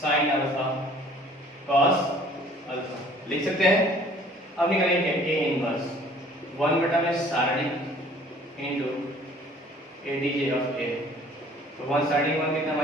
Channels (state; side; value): normal; both; correlation 0.54